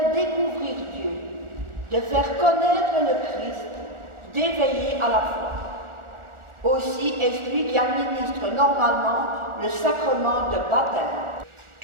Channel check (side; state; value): left; late; 1.4 ms